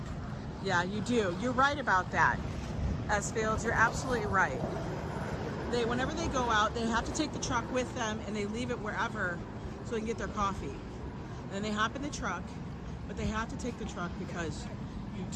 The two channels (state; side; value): identical; both; correlation 1.00